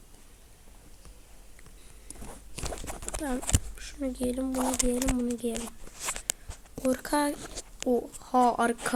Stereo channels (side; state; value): both; identical; correlation 1.00